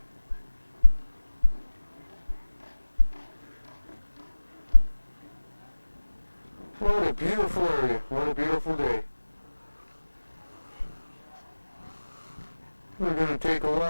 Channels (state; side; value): inverted; both; correlation -1.00